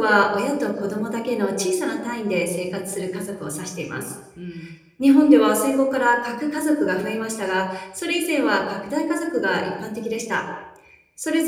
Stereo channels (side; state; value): both; identical; correlation 1.00